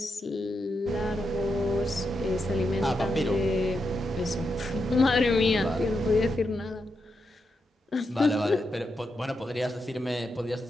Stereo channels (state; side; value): normal; both; correlation 0.85